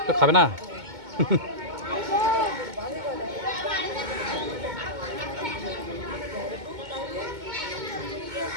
তো খাবে না?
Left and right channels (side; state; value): left; late; 2.2 ms